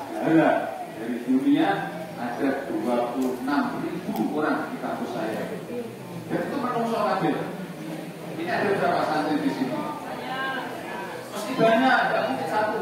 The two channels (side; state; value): both; identical; correlation 1.00